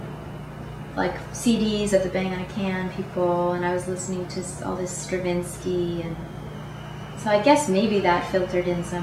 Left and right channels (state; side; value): identical; both; correlation 1.00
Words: like CDs of the Bang on a Can people, and I was listening to all this Stravinsky, and so I guess maybe that filtered in